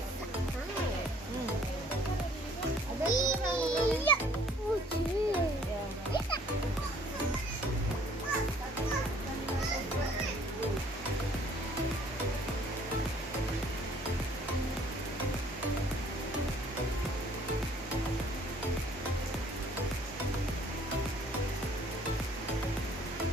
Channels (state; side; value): normal; both; correlation 0.59